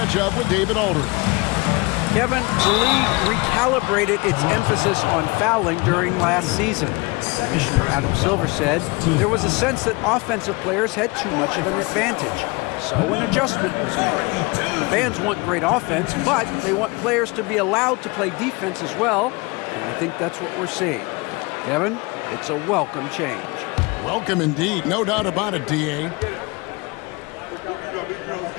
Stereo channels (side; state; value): right; quieter; 26.1 dB